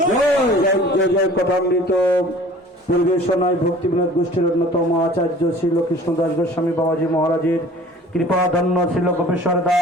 जय जय कथामृत परिवेशनाय भक्ति विनोद गोष्ठीर अन्यतम आचार्य श्री कृष्णदास गोस्वामी बाबाजी महाराजेर कृपा धन्य श्री गोपेश्वर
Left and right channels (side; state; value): both; normal; correlation 0.48